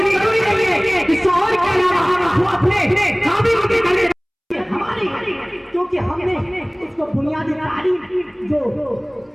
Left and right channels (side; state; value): both; identical; correlation 1.00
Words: जरूरी नहीं है कि शौहर के अलावा वो अपने खामिद की करे। हमारी क्योंकि हमने उसको बुनियादी तालीम